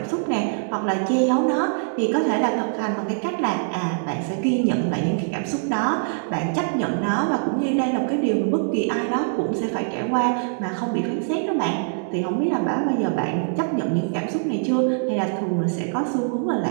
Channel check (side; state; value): left; silent; digital silence